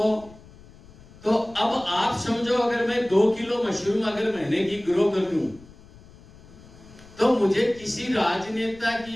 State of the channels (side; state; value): left; noise; rumble, 22 dB below the sound